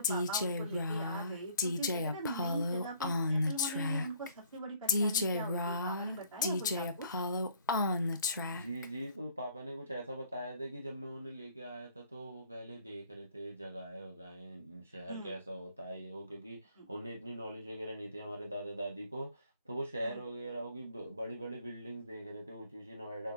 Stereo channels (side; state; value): both; inverted; correlation -0.58